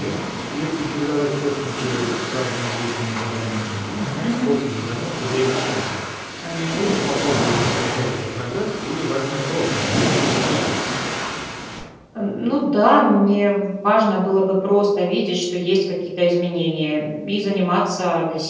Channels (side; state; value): both; identical; correlation 1.00